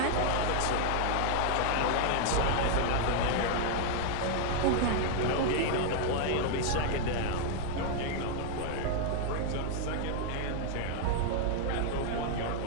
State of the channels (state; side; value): different; both; correlation 0.00